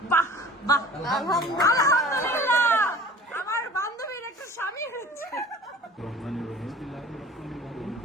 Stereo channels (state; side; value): normal; both; correlation 0.45